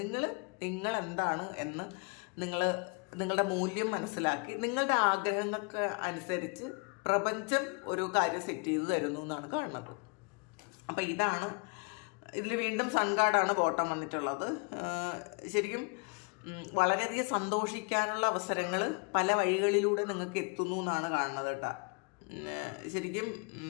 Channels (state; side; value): quieter; right; 33.6 dB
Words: എന്താണ് എന്ന് നിങ്ങളുടെ മൂല്യം മനസ്സിലാക്കി നിങ്ങളുടെ ആഗ്രഹങ്ങൾക്ക് അനുസരിച്ച് പ്രപഞ്ചം ഒരു കാര്യം സെറ്റ് ചെയ്ത് തരുന്നു എന്നാണ് കാണുന്നത്. അപ്പം ഇതിൽ വീണ്ടും സൺ കാർഡാണ് ബോട്ടം വന്നിട്ടുള്ളത്. ശരിക്കും വളരെയധികം സന്തോഷിക്കാനുള്ള അവസരങ്ങൾ പല വഴികളിലൂടെ നിങ്ങൾക്ക് എത്തുന്നു എന്നാണ് കാണുന്നത് കേട്ടോ. ശരിക്കും